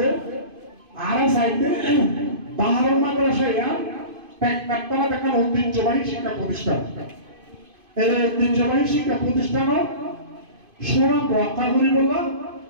আর সাইডে 12 মাদ্রাসায় পেকপাতলা দেখা ঐতিহ্যবাহী শিক্ষা প্রতিষ্ঠান এই ঐতিহ্যবাহী শিক্ষা প্রতিষ্ঠান সুনাম রক্ষা করিব না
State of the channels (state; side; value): late; left; 2.5 ms